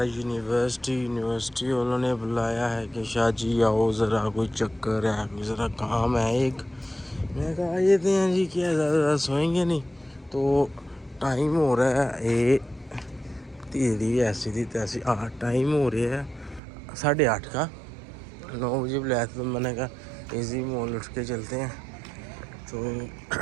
यूनिवर्सिटी उन्होंने बुलाया है कि शाह जी आओ ज़रा कोई चक्कर है, ज़रा काम है एक। मैं कहा आ जाते हैं जी, क्या ज़्यादा सोएंगे नहीं। तो टाइम हो रहा है ये तेरी ऐसी थी तैसी। हाँ टाइम हो रहा है 8:30 का। 9 बजे बुलाया तो मैंने कहा इजी मॉल उठ के चलते हैं। तो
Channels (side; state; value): left; drops out; at 16.6 s